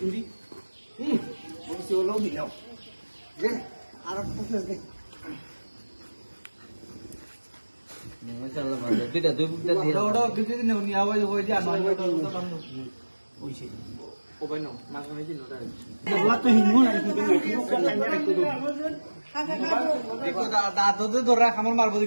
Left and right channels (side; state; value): both; inverted; correlation -1.00